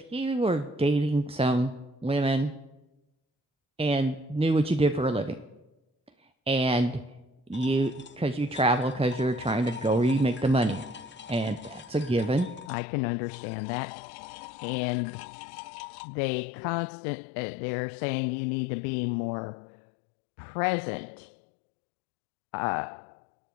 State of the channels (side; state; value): right; drops out; at 12.7 s